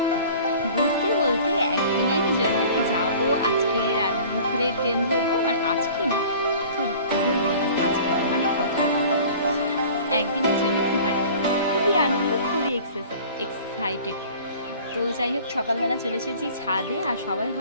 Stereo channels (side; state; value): both; inverted; correlation -0.46